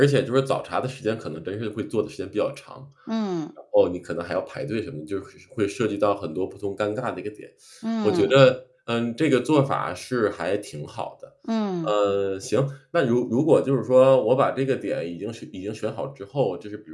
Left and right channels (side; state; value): both; identical; correlation 1.00